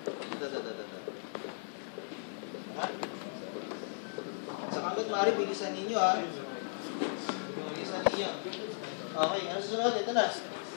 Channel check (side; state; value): right; silent; digital silence